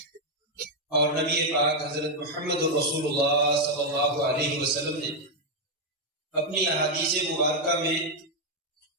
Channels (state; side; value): normal; both; correlation 0.01